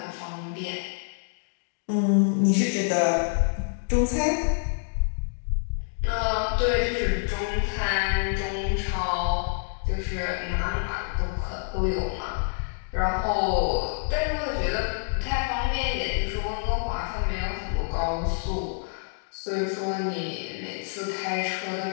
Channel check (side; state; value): right; silent; digital silence